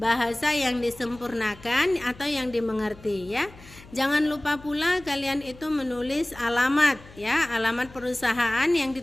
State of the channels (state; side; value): noise; left; hum, 21 dB below the sound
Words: yang disempurnakan atau yang dimengerti ya. Jangan lupa pula kalian itu menulis alamat ya, alamat perusahaan yang